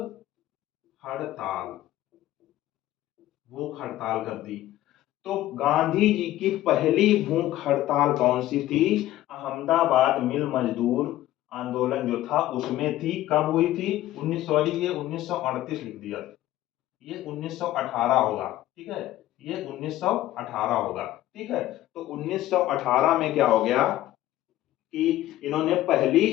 हड़ताल, भूख हड़ताल कर दी। तो गांधी जी की पहली भूख हड़ताल कौन सी थी, अहमदाबाद मिल मजदूर आंदोलन जो था उसमें थी। कब हुई थी, 1938 लिख दिया, ये 1918 होगा, ठीक है, ये 1918 होगा, ठीक है। तो 1918 में क्या हो गया कि इन्होंने पहली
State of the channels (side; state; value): right; quieter; 14.6 dB